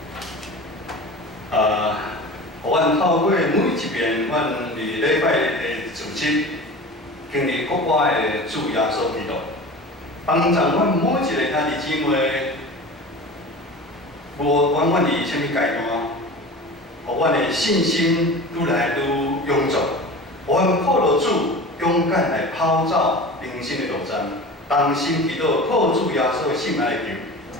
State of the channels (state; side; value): normal; both; correlation 0.35